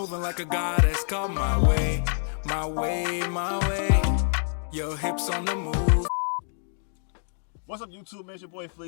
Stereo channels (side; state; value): right; silent; digital silence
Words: like a goddess, come my way, my way, my way. Your hips on the move. What's up, YouTube? Man, it's your boy